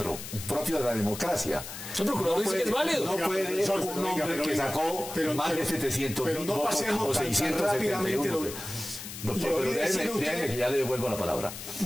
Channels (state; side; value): noise; left; hiss, 10 dB below the sound